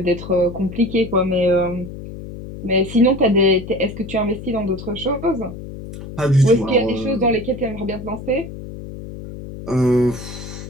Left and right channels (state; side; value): noise; left; hum, 11 dB below the sound